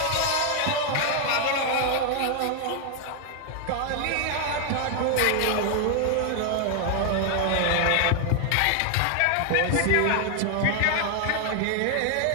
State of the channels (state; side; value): different; both; correlation 0.00